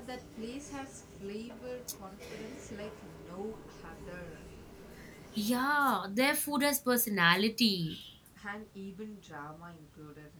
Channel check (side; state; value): both; identical; correlation 1.00